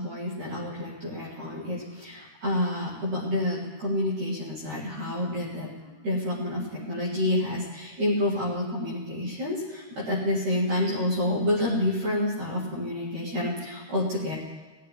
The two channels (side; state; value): left; late; 13 ms